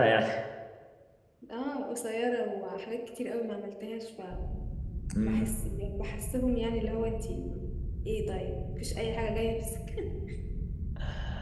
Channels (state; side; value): identical; both; correlation 1.00